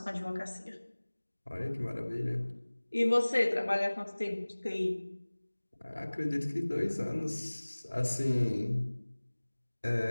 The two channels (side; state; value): both; inverted; correlation -1.00